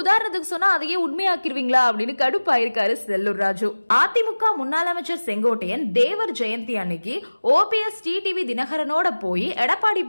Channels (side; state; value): both; inverted; correlation -1.00